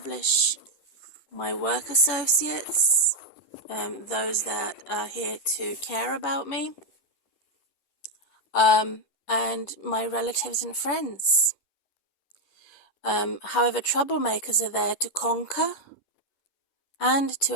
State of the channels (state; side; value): late; right; 10 ms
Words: my work associates, those that are here to care about me, and my relatives and friends. However, troublemakers are there to conquer and to